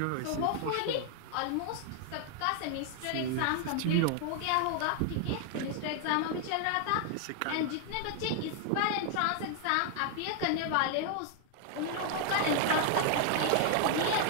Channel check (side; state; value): both; different; correlation 0.00